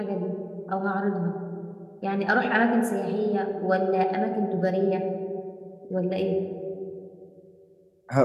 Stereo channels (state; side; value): identical; both; correlation 1.00